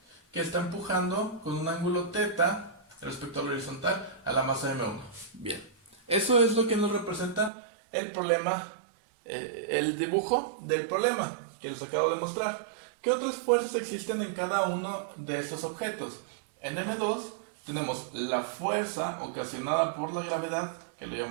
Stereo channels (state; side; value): drops out; left; at 7.5 s